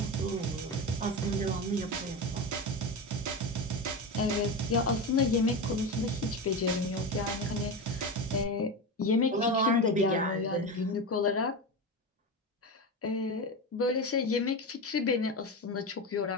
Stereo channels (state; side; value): normal; both; correlation 0.20